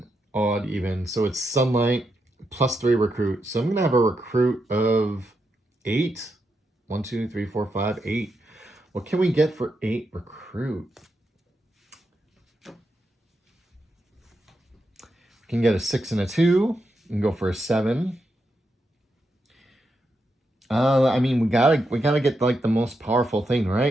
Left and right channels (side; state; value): both; normal; correlation 0.84